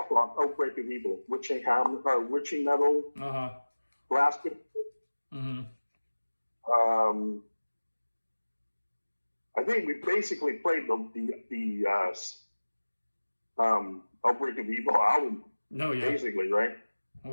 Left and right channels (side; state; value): both; inverted; correlation -1.00